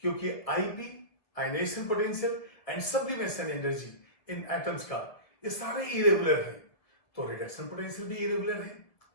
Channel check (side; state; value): right; late; 1.7 ms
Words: क्योंकि IP ionisation potential and sublimation energy in atoms का ये सारे इरेगुलर है, तो रिडक्शन पोटेंशियल भी इरेगुलर है।